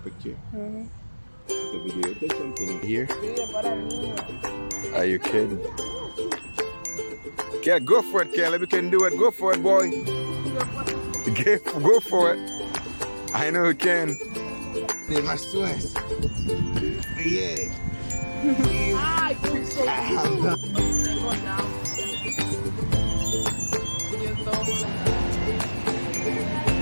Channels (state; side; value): inverted; both; correlation -1.00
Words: The video, take something here. Are you kidding? Yeah, go for it, Caleb. You can do it. Go for it, boy. Go for it. I know you can. They must West. Yeah.